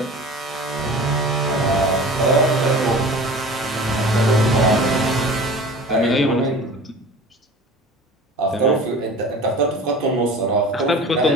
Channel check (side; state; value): both; normal; correlation 0.39